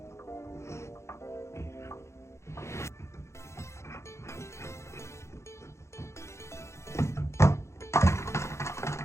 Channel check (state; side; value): late; right; 0.13 ms